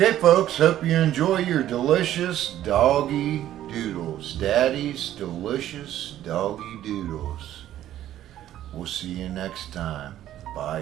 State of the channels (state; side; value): quieter; left; 12.5 dB